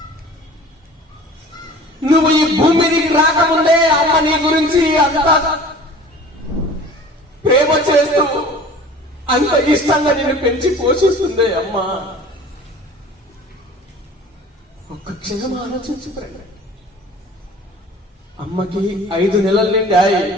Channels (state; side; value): normal; both; correlation 0.44